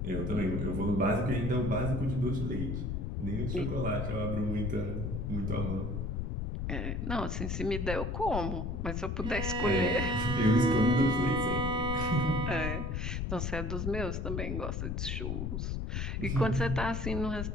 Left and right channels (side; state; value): left; noise; rumble, 2 dB below the sound